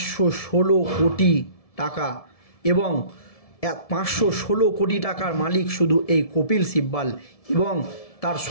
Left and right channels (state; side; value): late; right; 1.7 ms